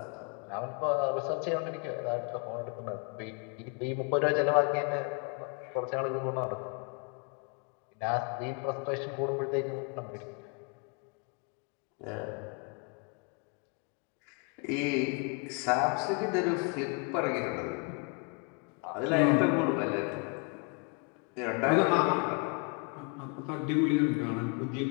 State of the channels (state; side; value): quieter; right; 35.2 dB